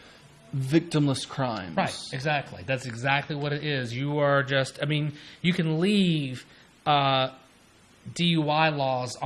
victimless crimes. Right, exactly. That's exactly what it is. You are just. I mean, you can leave DUI laws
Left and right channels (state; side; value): identical; both; correlation 1.00